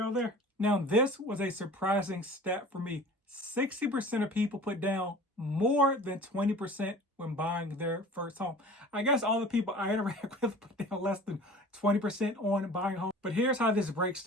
there. Now, this was a surprising stat for me. 60% of people put down more than 20% when buying their first home. I guess all the people I interact with put down less than 20% on buying a home. But here's how this breaks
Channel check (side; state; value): both; normal; correlation 0.42